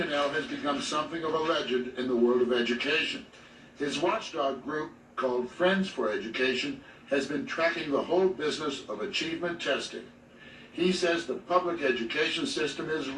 has become something of a legend in the world of education. His watchdog group, called Friends for Education, has been tracking the whole business of achievement testing. He says the public education system is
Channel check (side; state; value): both; identical; correlation 1.00